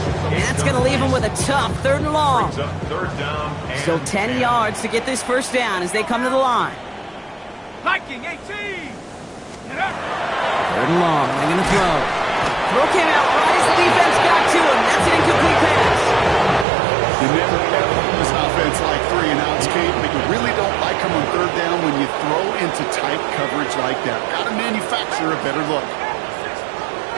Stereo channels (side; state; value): left; drops out; at 16.7 s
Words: And that's going to leave him with a tough 3rd and long. Still 10 yards to get this 1st down as they come to the line. Viking 18. 3rd and long. They're going to throw. Throw came out right as the defense got to him. That's an incomplete pass. You never ever use offense like 3 and outs, Kate, but you really don't like them on third down when you throw into tight coverage like that. Got to manufacture a better look.